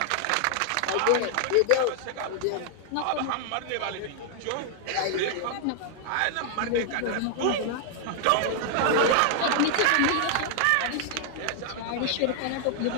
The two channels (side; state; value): both; different; correlation 0.00